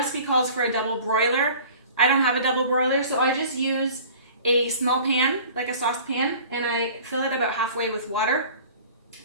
calls for a double broiler. I don't have a double broiler, so I just use a small pan, like a saucepan, and I fill it about halfway with water,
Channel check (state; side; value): inverted; both; correlation -0.45